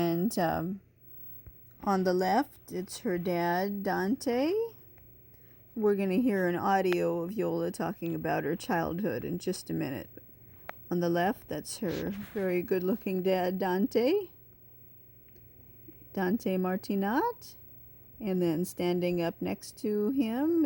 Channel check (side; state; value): both; identical; correlation 1.00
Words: on the left it's her dad Dante. We're going to hear an audio of Iole talking about her childhood in just a minute. On the left, that's her very good-looking dad Dante Martinat. And then standing up next to him